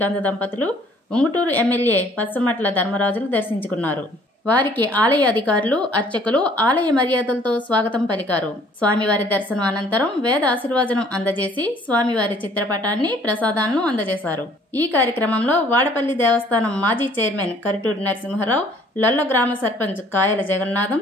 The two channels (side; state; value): both; normal; correlation 0.58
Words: దంపతులు, ఉంగుటూరు ఎమ్మెల్యే పచ్చమట్ల ధర్మరాజులు దర్శించుకున్నారు. వారికి ఆలయ అధికారులు, అర్చకులు ఆలయ మర్యాదలతో స్వాగతం పలికారు. స్వామివారి దర్శనం అనంతరం వేద ఆశీర్వచనం అందజేసి స్వామివారి చిత్రపటాన్ని, ప్రసాదాలను అందజేశారు. ఈ కార్యక్రమంలో వాడపల్లి దేవస్థానం మాజీ చైర్మన్ కరిటూరి నరసింహారావు, లొల్ల గ్రామ సర్పంచ్ కాయల